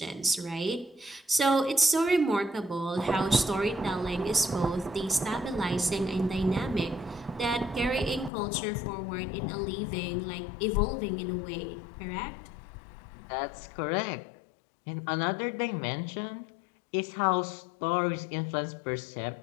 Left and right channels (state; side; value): drops out; right; at 8.3 s